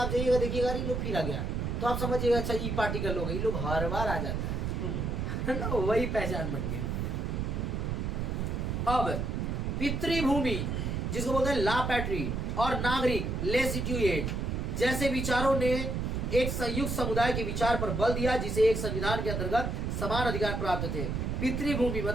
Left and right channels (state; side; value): noise; right; rumble, 1 dB below the sound